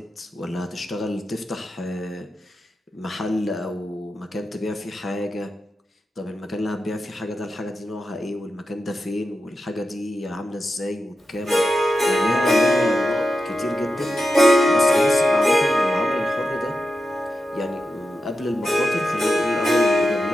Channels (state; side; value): normal; both; correlation 0.90